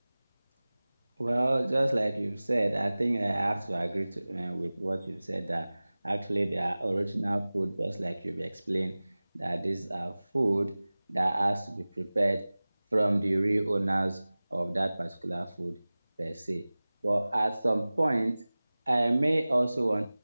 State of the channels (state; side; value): inverted; both; correlation -0.98